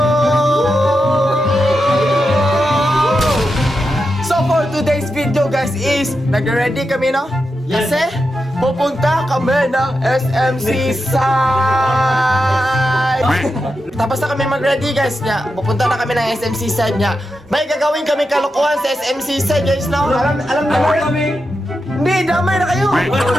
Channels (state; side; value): normal; both; correlation 0.88